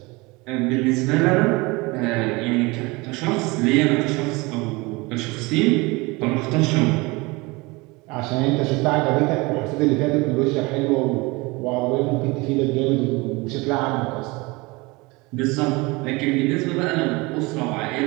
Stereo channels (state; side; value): quieter; left; 24.5 dB